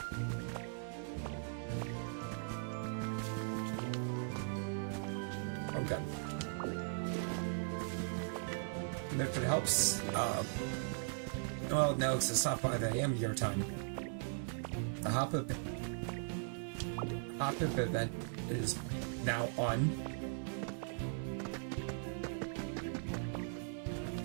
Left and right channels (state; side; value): silent; left; 52 dB below the other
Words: Oh god. But if it helps, well, no, because it's not 5 a.m. your time. The hop-up event is now on.